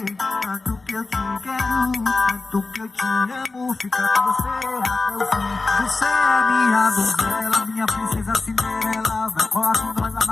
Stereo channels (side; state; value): right; quieter; 3.6 dB